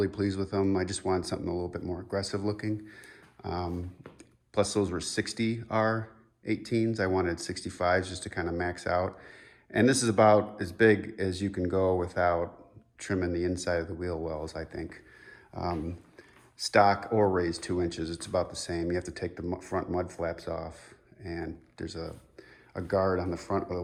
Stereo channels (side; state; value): both; identical; correlation 1.00